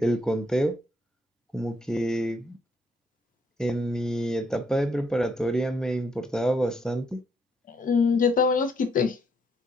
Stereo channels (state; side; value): normal; both; correlation 0.72